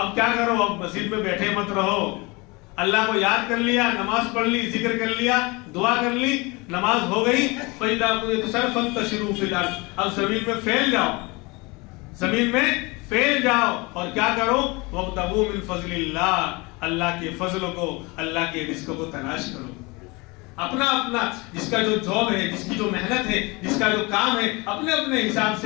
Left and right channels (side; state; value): right; quieter; 25.8 dB